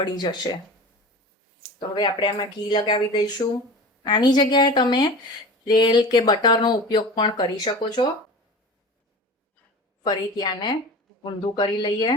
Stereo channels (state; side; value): normal; both; correlation 0.35